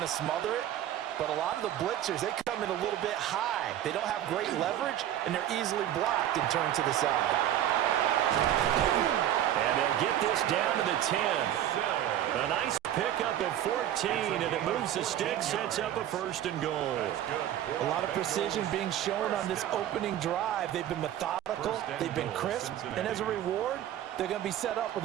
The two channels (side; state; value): left; quieter; 11.7 dB